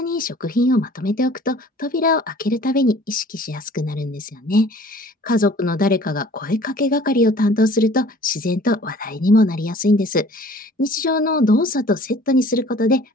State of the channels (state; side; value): normal; both; correlation 0.50